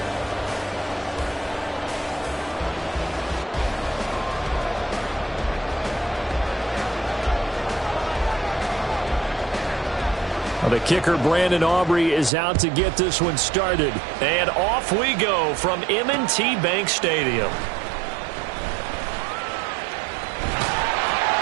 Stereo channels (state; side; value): drops out; left; at 12.3 s